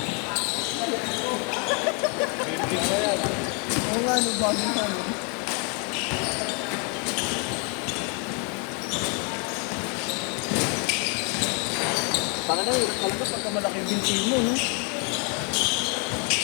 Oo nga, ano bagong ano. Taka na, hirap talaga pagka malaki yung binti mo, no?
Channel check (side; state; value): right; quieter; 36.6 dB